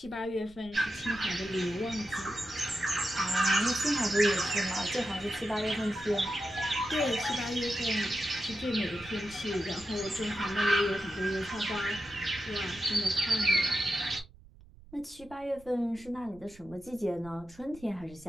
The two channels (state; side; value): noise; right; rumble, 22 dB below the sound